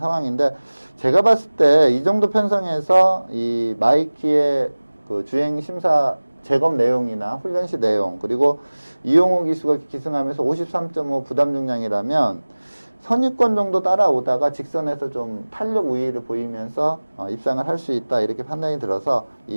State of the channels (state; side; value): inverted; both; correlation -1.00